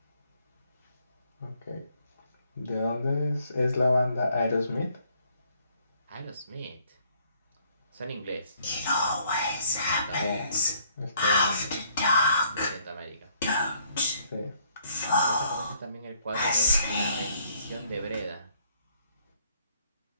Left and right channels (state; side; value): inverted; both; correlation -0.66